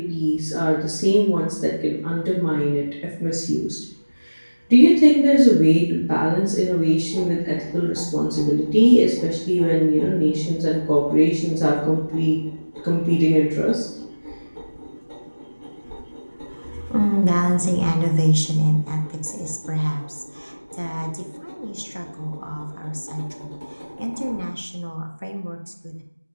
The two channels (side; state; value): both; inverted; correlation -1.00